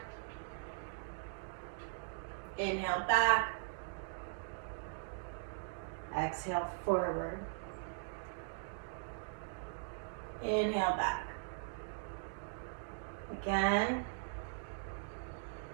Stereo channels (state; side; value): silent; left; digital silence